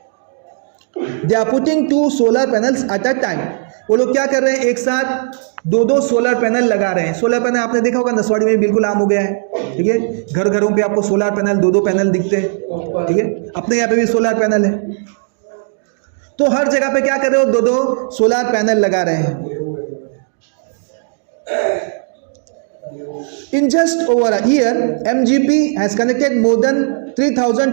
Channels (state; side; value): silent; left; 69 dB below the other